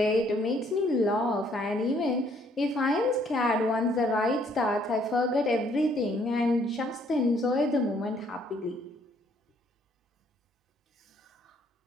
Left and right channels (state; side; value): normal; both; correlation 0.65